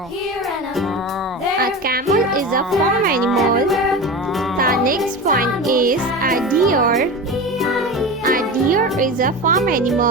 A camel is a farm animal. The next one is a deer. A deer is a farm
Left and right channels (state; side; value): normal; both; correlation 0.27